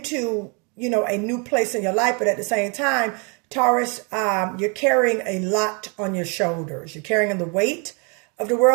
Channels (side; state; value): left; quieter; 34.1 dB